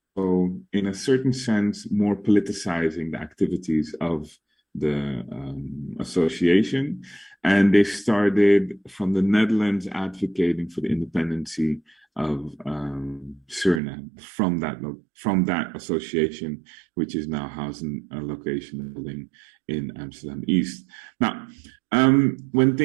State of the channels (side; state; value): left; drops out; at 13.8 s